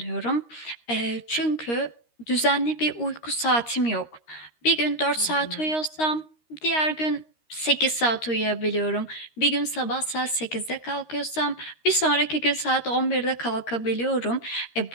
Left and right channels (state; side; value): late; right; 13 ms